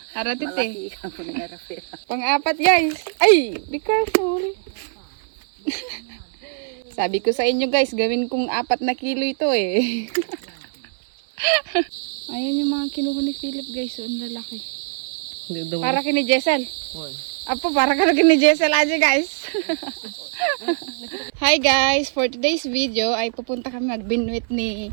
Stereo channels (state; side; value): silent; left; 61 dB below the other